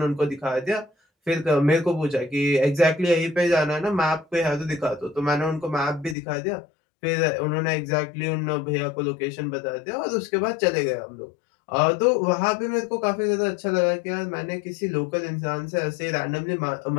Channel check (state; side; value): drops out; right; at 6.2 s